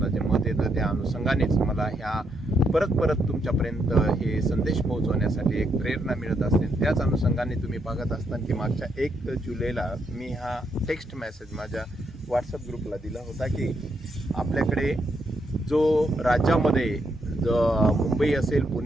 जे मत येतं त्या अनुषंगानेच मला ह्या परत तुमच्यापर्यंत हे संदेश पोहोचवण्यासाठी एक प्रेरणा मिळत असते. त्याच अनुषंगाने तुम्ही बघत असताना की मागच्या 1 जुलैला मी हा टेक्स्ट मेसेज माझ्या व्हॉट्सअप ग्रुपला दिला होता की आपल्याकडे जो राज्यामध्ये मुंबई असेल,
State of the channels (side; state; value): both; normal; correlation 0.78